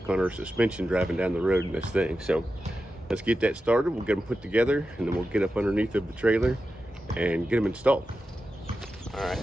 on our suspension driving down the road in this thing. So let's get that started. We'll get them put together and then we'll get up underneath of the trailer and get them installed. All right,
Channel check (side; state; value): both; normal; correlation 0.91